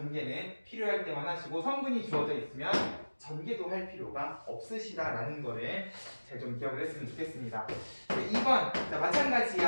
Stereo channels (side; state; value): both; inverted; correlation -1.00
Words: 필요할 때만 하시고 성분이 주어져 있으면 전개도 할 필요가 없으시다라는 거를 잘 좀 기억을 했으면 좋겠습니다. 2번 자,